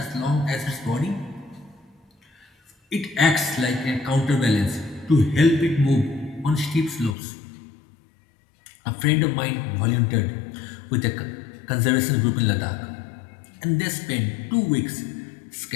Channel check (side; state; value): right; drops out; at 7.2 s